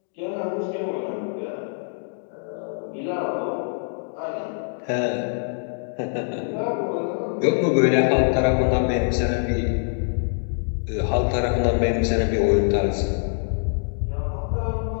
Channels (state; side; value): silent; right; digital silence